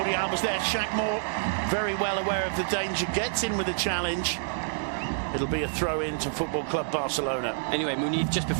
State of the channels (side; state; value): left; silent; digital silence